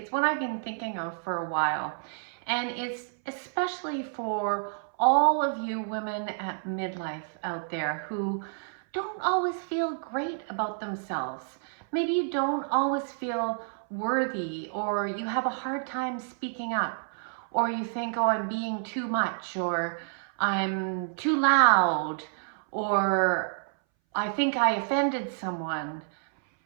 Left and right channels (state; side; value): silent; left; 58 dB below the other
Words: one I've been thinking of for a while, and it's especially for all of you women at midlife out there who don't always feel great about themselves. Maybe you don't always feel worthy, or you have a hard time speaking up, or you think, oh, I'm being too much, or I'm too loud, or I think I offended someone,